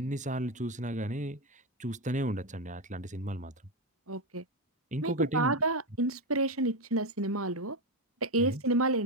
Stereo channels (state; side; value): normal; both; correlation 0.10